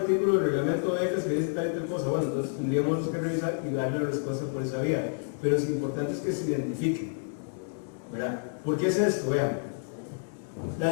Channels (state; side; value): silent; right; digital silence